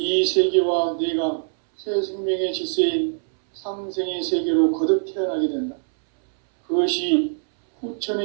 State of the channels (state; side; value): silent; left; 64 dB below the other